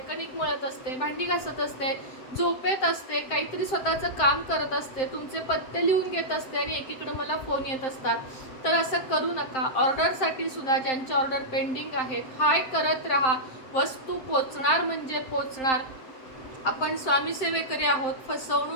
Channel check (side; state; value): right; late; 7.7 ms